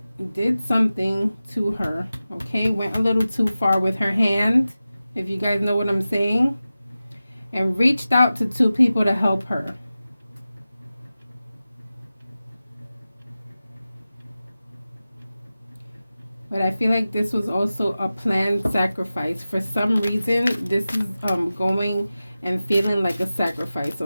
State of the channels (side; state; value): both; inverted; correlation -0.95